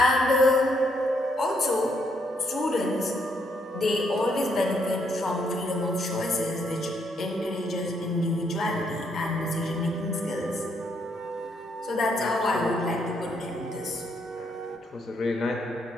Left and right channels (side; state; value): both; normal; correlation 0.74